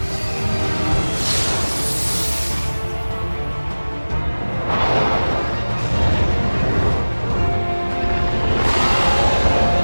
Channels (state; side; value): inverted; both; correlation -1.00